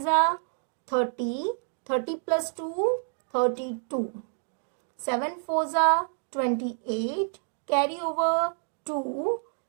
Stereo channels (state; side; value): silent; left; digital silence